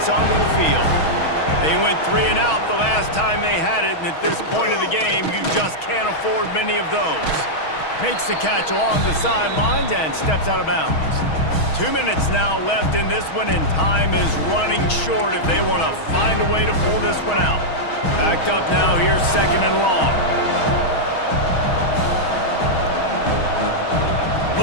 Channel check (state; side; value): late; right; 6.3 ms